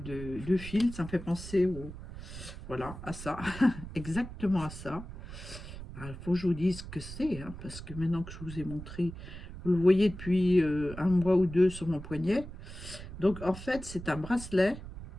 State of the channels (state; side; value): noise; right; rumble, 12 dB below the sound